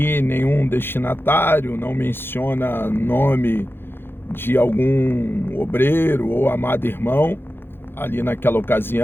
nenhum destinatário, não menciona nome de algum obreiro ou amado irmão ali naquela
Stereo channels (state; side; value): late; right; 0.10 ms